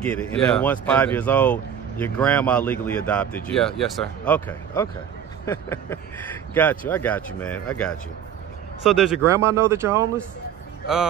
it. And then once 5 years old, your grandma legally adopted you. Yeah, yes, sir. Okay. Got you. I got you, man. I got you. So does your grandma know that you're homeless?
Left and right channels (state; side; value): quieter; left; 8.9 dB